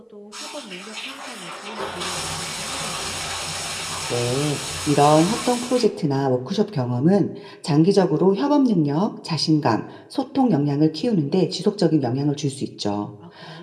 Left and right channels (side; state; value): both; identical; correlation 1.00